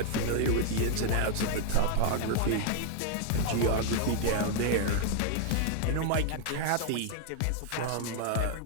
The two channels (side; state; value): both; different; correlation 0.00